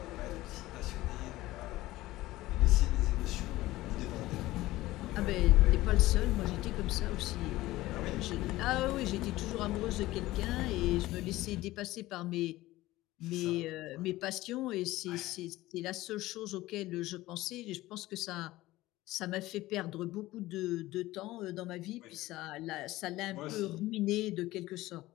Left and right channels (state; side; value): quieter; right; 17.4 dB